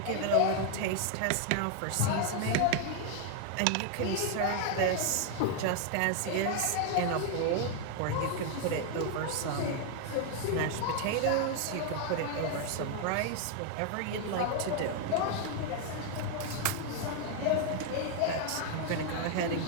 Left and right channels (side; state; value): both; different; correlation 0.00